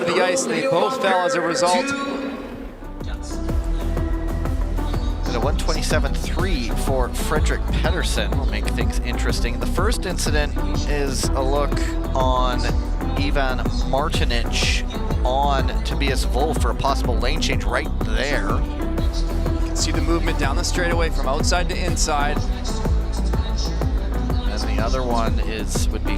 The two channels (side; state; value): both; identical; correlation 1.00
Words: the ice, and they both fell as a result. And a 127.3 for Frederick Pedersen will make things interesting. The first incident is a look on Ivan Martinic on Tobias Wolf for a possible lane change right there. You can see the movement down the straightaway from outside to inside. And the other one would be